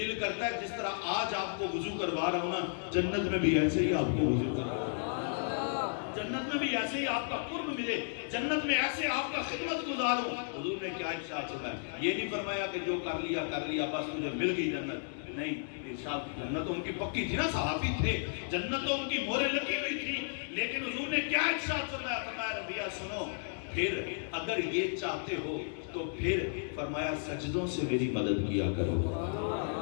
کرتا ہے جس طرح آج آپ کو وضو کروا رہا ہوں نا, جنت میں بھی ایسے ہی آپ کو وضو کروا رہا ہوں, جنت میں بھی ایسے ہی آپ کا قرب ملے, جنت میں ایسے آپ کا خدمت گزاروں. حضور نے کیا ارشاد فرمایا؟ یہ نہیں فرمایا کہ جو کر لیا بس مجھے مل گئی جنت. نہیں, ارشاد جنت تو ان کی پکی تھی نا, صحابی تھے, جنت تو ان کی مورے لگی ہوئی تھی. لیکن حضور نے کیا ارشاد فرمایا؟ فرمایا ربیعہ سنو, پھر اگر یہ چاہتے ہو تو پھر فرمایا سجدوں سے میری مدد کیا کرو.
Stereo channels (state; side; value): silent; right; digital silence